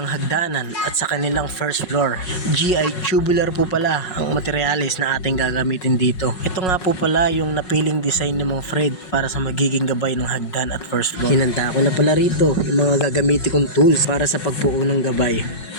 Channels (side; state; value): right; late; 5.5 ms